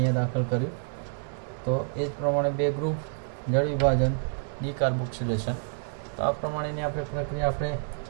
દાખલ કર્યું. તો એ જ પ્રમાણે 2 ગ્રુપ, જળ વિભાજન, ડીકાર્બોક્સિલેશન. તો આ પ્રમાણેની આપણે પ્રક્રિયા આપણે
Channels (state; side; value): silent; left; 58 dB below the other